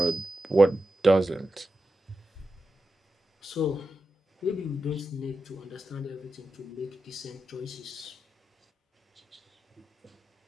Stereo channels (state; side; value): normal; both; correlation 0.90